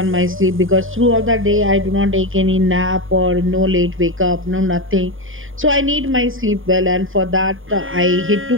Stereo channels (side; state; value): left; late; 0.59 ms